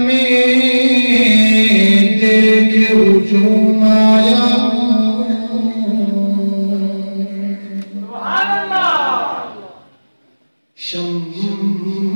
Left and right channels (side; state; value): both; inverted; correlation -1.00